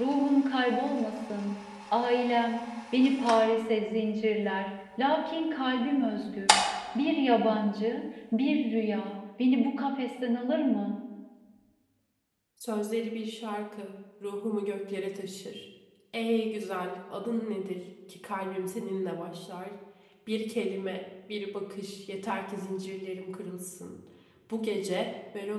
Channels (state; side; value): identical; both; correlation 1.00